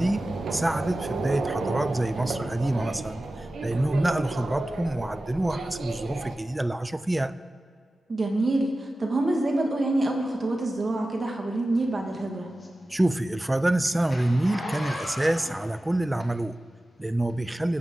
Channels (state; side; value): normal; both; correlation 0.95